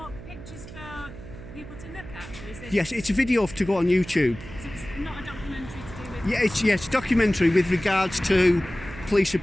pictures for people to look at? Or is this, Yes, it's a video to go on YouTube. so it's not a documentary to do with... Yeah, it's a documentary with regards to police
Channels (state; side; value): noise; right; hum, 14 dB below the sound